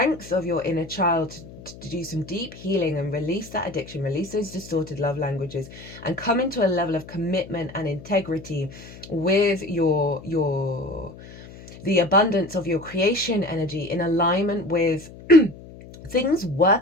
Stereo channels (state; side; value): noise; left; hum, 17 dB below the sound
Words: of your inner child to do some deep healing and release that addiction, release those distorted love languages, and come into a level of commitment and integrity with the abundance of your creation energy, in alignment with things